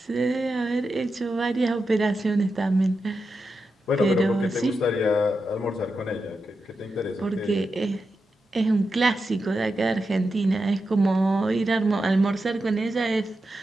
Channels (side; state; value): both; normal; correlation 0.89